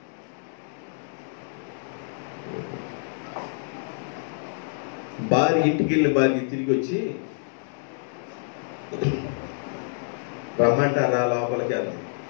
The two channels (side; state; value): right; silent; digital silence